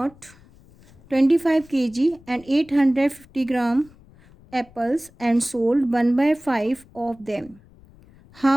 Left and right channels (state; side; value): noise; left; rumble, 26 dB below the sound